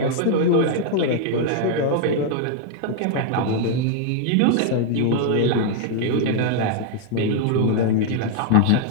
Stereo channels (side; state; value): both; different; correlation 0.00